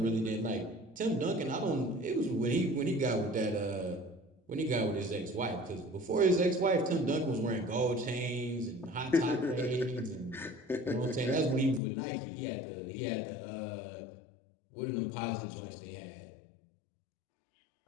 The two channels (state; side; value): drops out; right; at 11.8 s